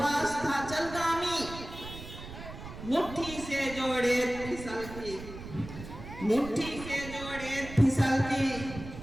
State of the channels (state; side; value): noise; right; rumble, 12 dB below the sound